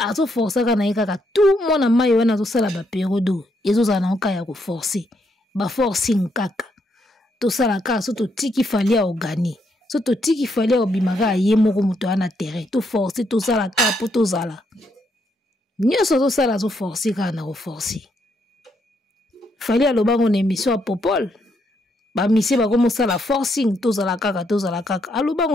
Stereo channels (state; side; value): normal; both; correlation 0.76